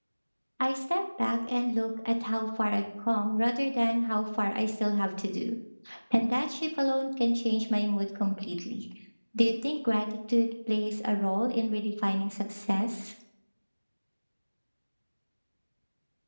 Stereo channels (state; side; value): inverted; both; correlation -1.00